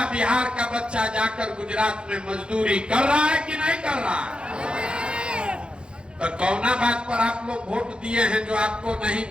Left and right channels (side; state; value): left; late; 0.054 ms